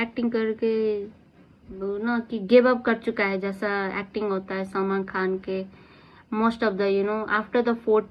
करके वो ना कि गिव अप कर चुका है, जैसा एक्टिंग होता है सलमान खान के। Most of the after the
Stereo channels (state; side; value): identical; both; correlation 1.00